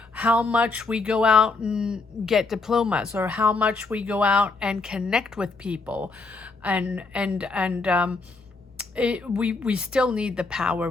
how much we go out and get diplomas, or how much we go out and connect with people, we still need the power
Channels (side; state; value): right; quieter; 3.8 dB